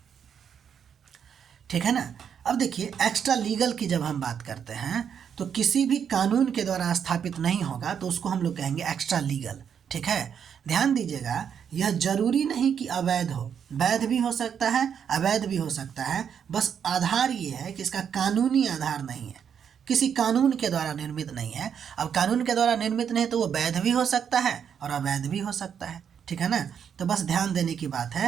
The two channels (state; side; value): quieter; left; 7.8 dB